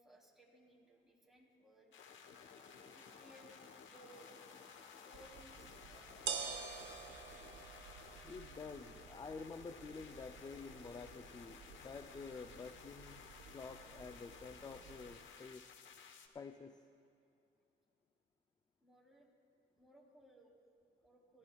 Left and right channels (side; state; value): both; normal; correlation 0.27